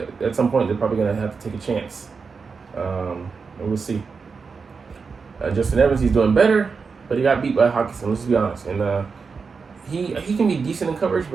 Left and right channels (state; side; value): quieter; left; 5.1 dB